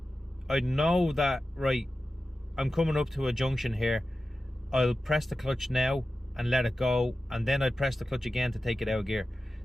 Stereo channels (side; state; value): both; normal; correlation 0.93